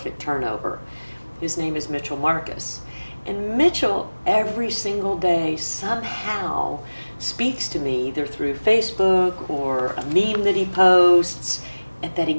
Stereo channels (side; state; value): both; inverted; correlation -1.00